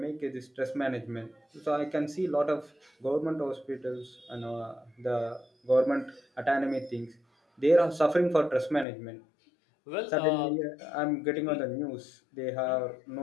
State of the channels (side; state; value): right; drops out; at 8.8 s